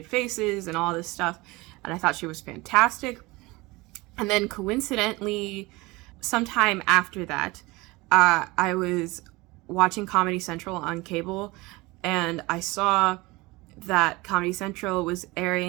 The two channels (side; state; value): left; quieter; 22.7 dB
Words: faces and all this stuff. And I thought she was fantastic. And then coincidentally, sometime after that, I was watching Comedy Central on cable, and I saw that Comedy Central was